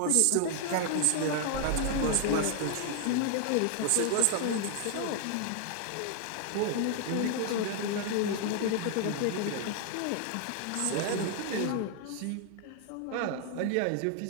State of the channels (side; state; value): both; different; correlation 0.00